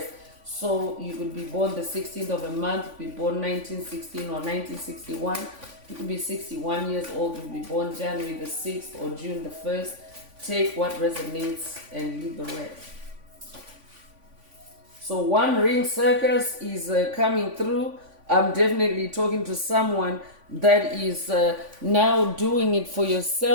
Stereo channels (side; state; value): left; late; 3.5 ms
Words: So you could be born the 16th of a month, be born 1916 or 1961. You could be 61 years old, you'll be born January the 6th or June the 1st. Take what resonates and leave the rest. So One Ring Circus is coming through. I'm definitely talking to someone that is now doing it for